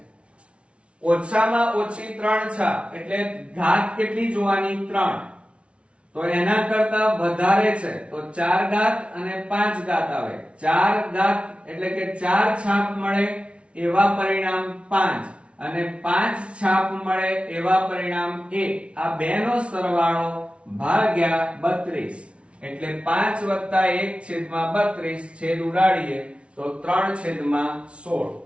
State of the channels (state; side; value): late; left; 0.060 ms